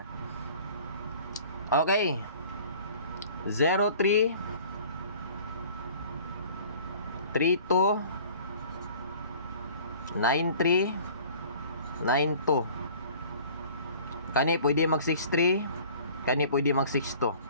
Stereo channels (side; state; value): both; inverted; correlation -0.48